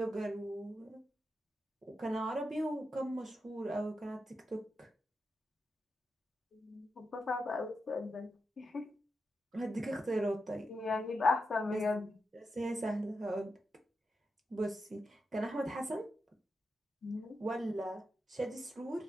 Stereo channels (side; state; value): both; normal; correlation 0.87